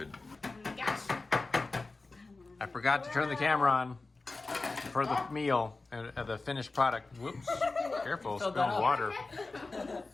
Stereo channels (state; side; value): quieter; right; 3.5 dB